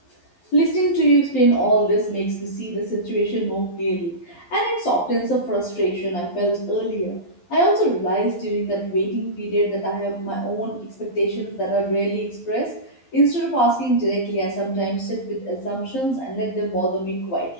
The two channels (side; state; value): right; late; 11 ms